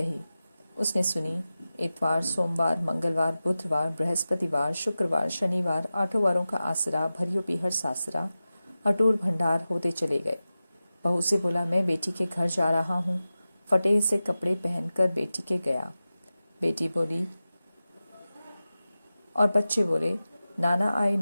उसने सुनी। इतवार, सोमवार, मंगलवार, बुधवार, बृहस्पतिवार, शुक्रवार, शनिवार, 8 वारों का आसरा, भरियो पीहर सासरा, अटूट भंडार होते चले गए। बहू से बोला, मैं बेटी के घर जा रहा हूँ। फटे से कपड़े पहनकर बेटी के गया। बेटी बोली और बच्चे बोले, नाना आए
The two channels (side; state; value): both; inverted; correlation -0.95